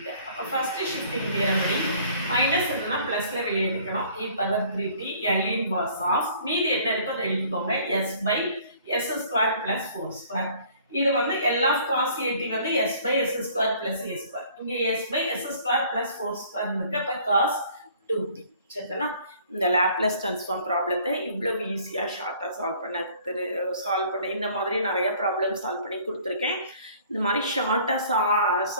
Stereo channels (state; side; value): inverted; both; correlation -0.55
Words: அப்போ ஃபஸ்ட்டு ஷிஃப்டிங் தியரம் படி மைனஸ் இருந்தால் ப்ளஸில் வெளியே எடுக்கணும். e power 3t L inverse of மீதி என்ன இருக்கோ அதை எழுதிக்கோங்க, s by s square plus 4 square. இது வந்து L of cos at வந்து s by s square plus a square. இங்கே s by s square plus 4 square இருக்கு. அப்போ cos 2t. சரிங்களா? இந்த லேப்லஸ் ட்ரான்ஸ்ஃபார்ம் ப்ராப்ளத்தை இவ்வளவு ஈஸியாக ஷார்ட்டாக சால்வ் பண்ண இந்த மாதிரி நிறையா ப்ராப்ளம் சால்வ் பண்ணி கொடுத்துருக்கேன். இந்த மாதிரி ஷார்ட்டாக